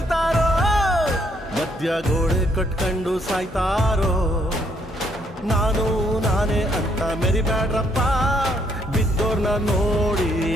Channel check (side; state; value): both; normal; correlation 0.71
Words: ಮಧ್ಯ ಗೋಡೆ ಕಟ್ಕೊಂಡು ಸಾಯ್ತಾರೋ ನಾನೇ ಅಂತ ಮೆರಿಬ್ಯಾಡ್ರಪ್ಪ ಬಿದ್ದೋರ್ನ ನೋಡಿ